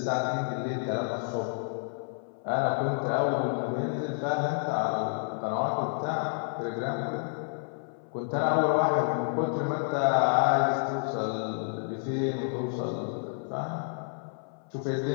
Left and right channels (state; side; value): silent; right; 57 dB below the other